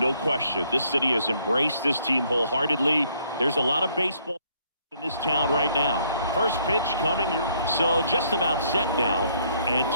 question. This city has embraced this team wholeheartedly. There's a lot of baseball in this town right now. First pitch coming your so just about set now, and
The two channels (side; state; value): both; inverted; correlation -0.67